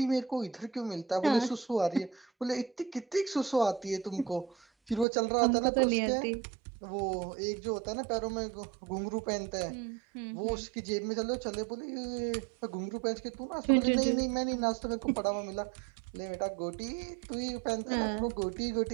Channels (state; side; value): drops out; left; at 5.1 s